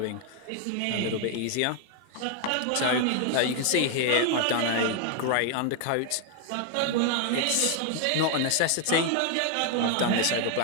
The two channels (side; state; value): both; different; correlation 0.00